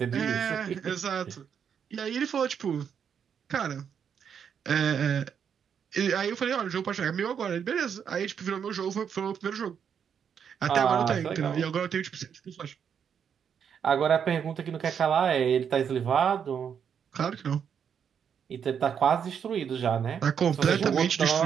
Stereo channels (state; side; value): quieter; left; 7.6 dB